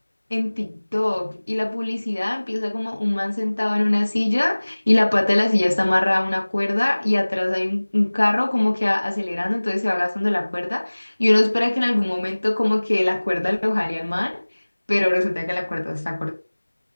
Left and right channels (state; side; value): inverted; both; correlation -1.00